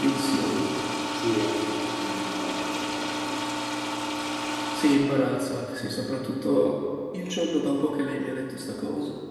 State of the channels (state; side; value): identical; both; correlation 1.00